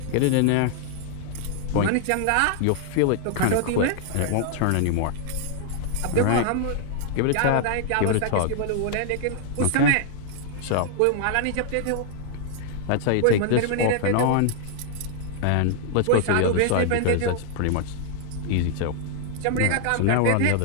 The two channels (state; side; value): different; both; correlation 0.00